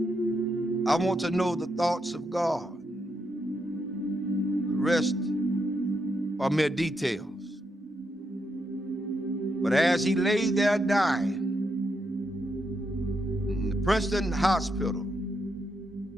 I want to know the thoughts of God. The rest are mere details. But as he lay there dying in the Princeton hospital,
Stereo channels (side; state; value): both; normal; correlation 0.81